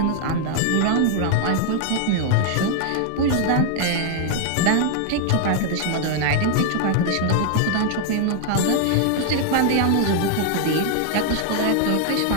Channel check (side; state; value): both; different; correlation -0.01